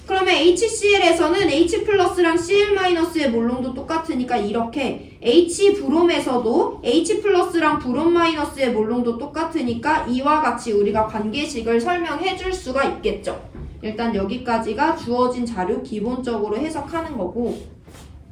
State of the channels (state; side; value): identical; both; correlation 1.00